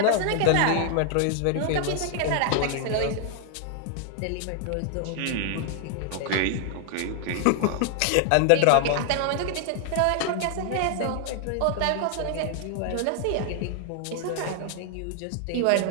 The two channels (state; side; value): different; both; correlation 0.00